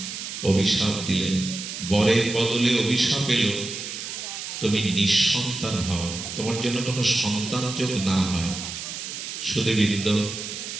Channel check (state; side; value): noise; right; hiss, 7 dB below the sound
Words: অভিশাপ দিলেন। বরের বদলে অভিশাপ এলো, তুমি নিঃসন্তান হও, তোমার জন্য কোনো সন্তান যোগ না হয়। সুধীবৃন্দ,